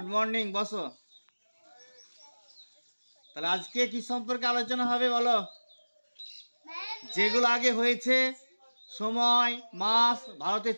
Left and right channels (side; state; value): both; inverted; correlation -1.00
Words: morning, বসো। তাহলে আজকে কি সম্পর্কে আলোচনা হবে বলো? যেগুলো আগে হয়েছে, সময়, মাস, ভারতের